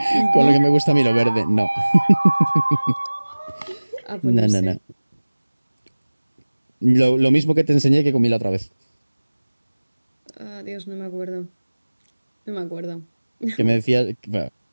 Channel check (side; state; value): both; inverted; correlation -1.00